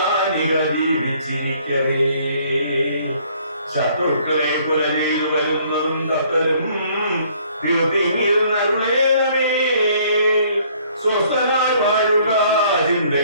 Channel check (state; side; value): inverted; both; correlation -0.61